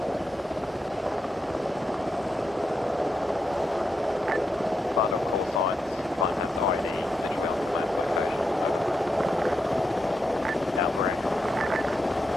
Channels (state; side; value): normal; both; correlation 0.85